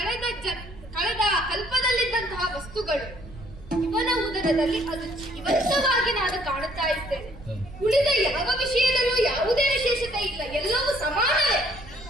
ಕಲ್ಪದಲ್ಲಿದ್ದಂತಹ ವಸ್ತುಗಳು ಇವನ ಉದರದಲ್ಲಿ ಅದು ಜೀವಂತವಾಗಿ ನಾನು ಕಾಣುತ್ತಾ ಇದ್ದೇನೆ. ಉಳಿದ ಯಾವ ವಿಷಯದಲ್ಲೂ ಯಾವುದೇ ವಿಶೇಷತೆ ಇಲ್ಲ, ಎಲ್ಲವೂ ಸಮಾನವೇ.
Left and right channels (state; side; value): noise; right; rumble, 16 dB below the sound